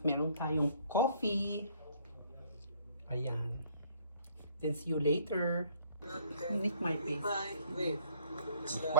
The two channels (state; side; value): inverted; both; correlation -0.60